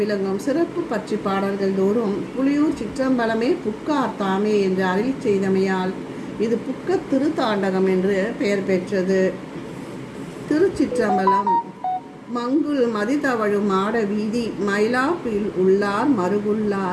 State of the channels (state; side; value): identical; both; correlation 1.00